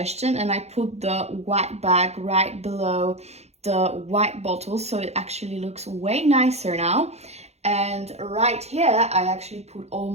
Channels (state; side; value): late; left; 0.31 ms